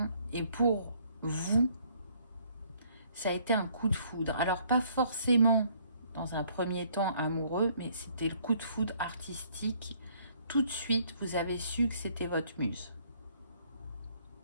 et pour vous, ça a été un coup de foudre. Alors, pas forcément dans un premier temps amoureux, mais c'était le coup de foudre artistique. Tout de suite, vous avez su que c'était votre muse.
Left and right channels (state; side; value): inverted; both; correlation -0.64